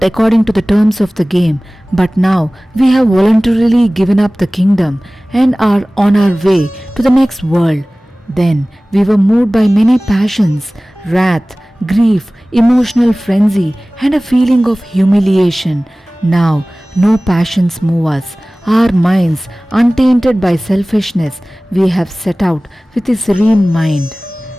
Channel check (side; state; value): both; normal; correlation 0.98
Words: according to the terms of the game. But now we have voluntarily given up the kingdom and are on our way to the next world. Then we were moved by many passions, wrath, grief, emotional frenzy, and a feeling of humiliation. Now no passions move us. Our minds, untainted by selfishness, we have set out with a serene mind.